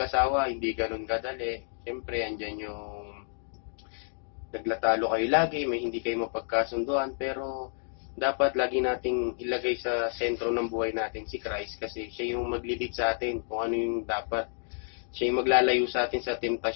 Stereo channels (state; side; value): silent; right; digital silence